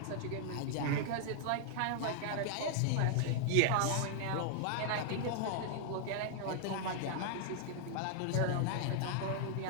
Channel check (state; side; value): different; both; correlation 0.00